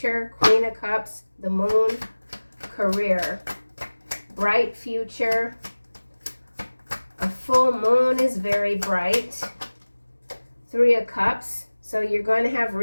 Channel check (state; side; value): inverted; both; correlation -1.00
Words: Queen of Cups. The Moon. Career. Bright future. A full moon is very bright. Three of Cups. So you're going to have